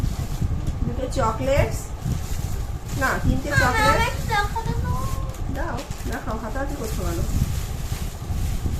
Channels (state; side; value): identical; both; correlation 1.00